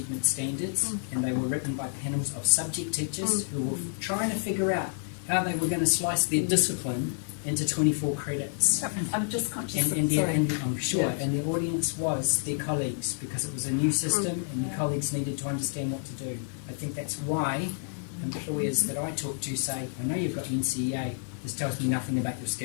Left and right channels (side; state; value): right; silent; digital silence